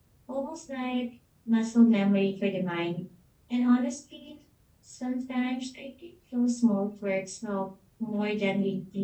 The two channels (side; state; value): both; identical; correlation 1.00